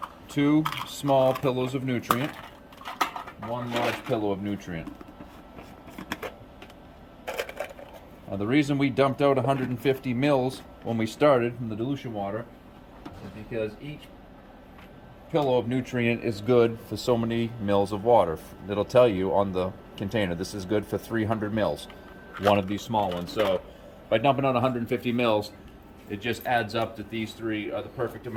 2 small pillows of nutrient, 1 large pillow of nutrient. The reason we dumped out 150 mils when we started from the dilution water is because each pillow of nutrient is good for so many mils of water. It'll tell you on the container, this is good for 300 mils, one of these small ones. So by dumping out 150 mils, it just adds up that these 3 are the perfect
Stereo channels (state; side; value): identical; both; correlation 1.00